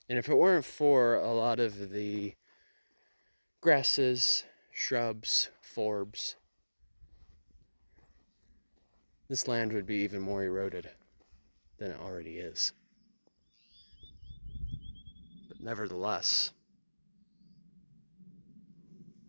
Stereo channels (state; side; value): inverted; both; correlation -1.00